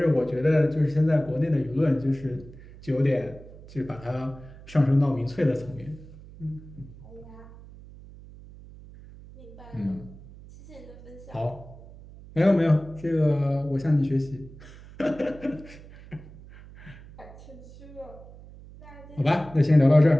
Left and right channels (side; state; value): right; noise; hum, 19 dB below the sound